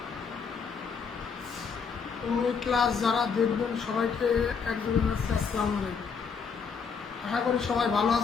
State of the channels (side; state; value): right; quieter; 5.9 dB